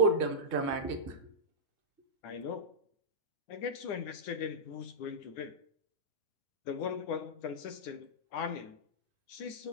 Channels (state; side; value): late; right; 9.9 ms